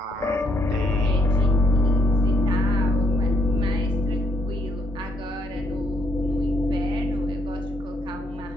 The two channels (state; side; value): normal; both; correlation 0.73